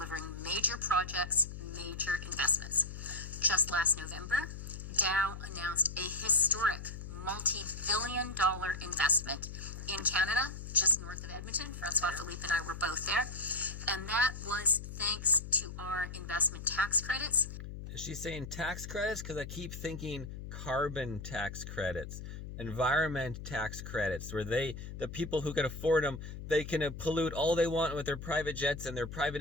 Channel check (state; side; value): noise; left; hum, 9 dB below the sound